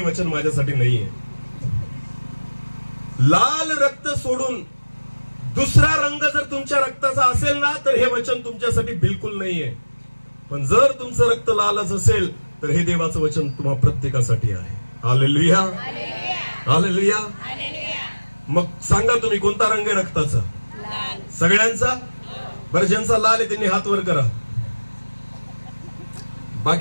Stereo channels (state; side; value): inverted; both; correlation -1.00